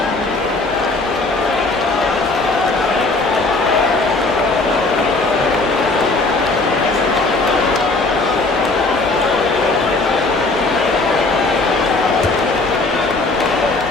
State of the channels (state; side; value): quieter; right; 3.3 dB